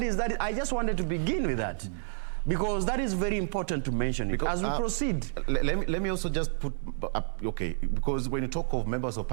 is. I just wanted to begin with that, because that is very important to mention it as we proceed. Let me also just put up, okay, because when you talk of members of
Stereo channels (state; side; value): silent; left; digital silence